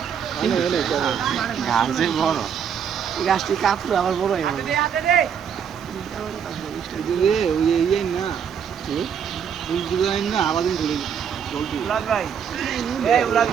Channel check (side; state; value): left; quieter; 7.7 dB